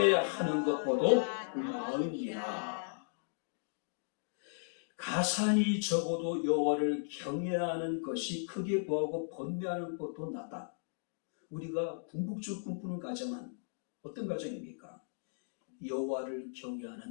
것보다 나으니라. 가산이 적어도 여호와를 경외하는 것이 크게 부하고 번뇌하는 것도 낫다. 우리가 궁극적으로 꿈꾸는 가정은 어떤 가정입니까? 여호와를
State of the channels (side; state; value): right; silent; digital silence